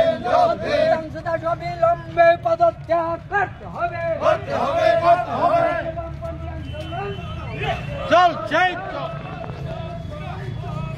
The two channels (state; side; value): identical; both; correlation 1.00